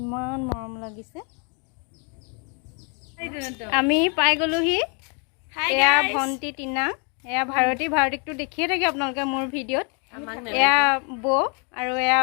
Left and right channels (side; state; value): right; quieter; 36.7 dB